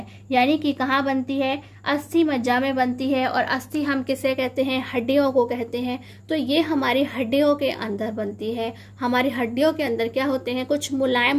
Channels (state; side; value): identical; both; correlation 1.00